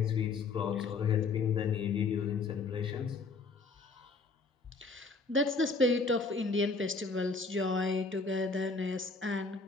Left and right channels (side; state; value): right; quieter; 4.1 dB